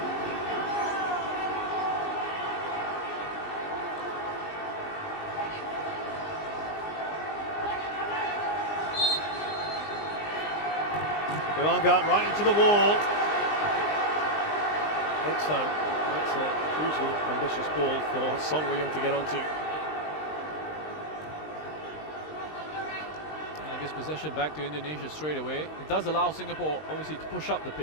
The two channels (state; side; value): late; right; 19 ms